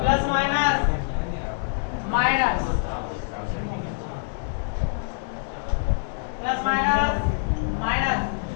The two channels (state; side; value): silent; right; digital silence